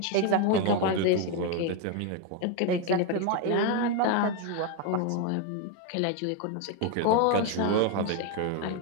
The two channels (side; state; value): both; different; correlation 0.01